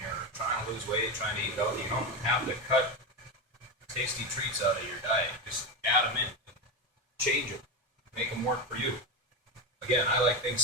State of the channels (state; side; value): normal; both; correlation 0.15